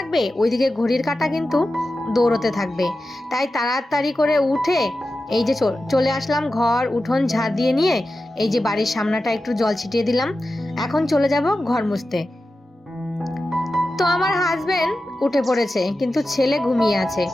ওইদিকে ঘড়ির কাঁটা কিন্তু দৌড়তে থাকবে। তাই তাড়াতাড়ি করে উঠে এই যে চলে আসলাম, ঘর উঠোন ঝাড় দিয়ে নিয়ে এই যে বাড়ির সামনাটা একটু জল ছিটিয়ে দিলাম। এখন চলে যাব ঘর মুছতে। তো আমার হাজবেন্ড উঠে পড়েছে, কিন্তু ছেলে ঘুমিয়ে আছে।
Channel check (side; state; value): both; normal; correlation 0.92